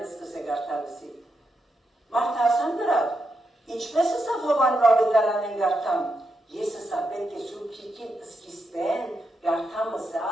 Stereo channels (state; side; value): normal; both; correlation 0.83